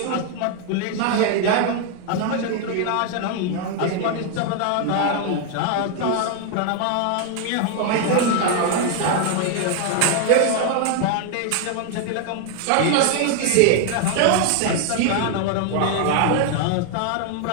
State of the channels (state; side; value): different; both; correlation 0.01